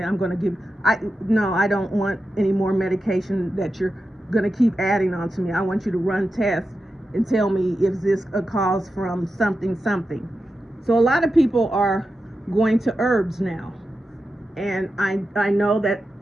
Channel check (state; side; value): normal; both; correlation 0.90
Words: I'm going to give. No, I don't want any more medication that you're going to keep adding on to me. I want you to run tests and tell me if this a cause from something. So a lot of people are going to herbs now, and I know that